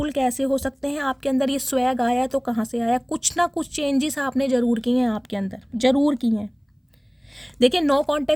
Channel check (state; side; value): identical; both; correlation 1.00